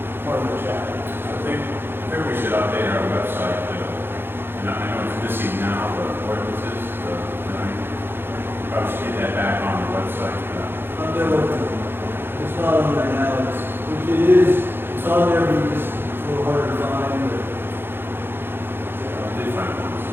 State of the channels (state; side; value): late; left; 0.10 ms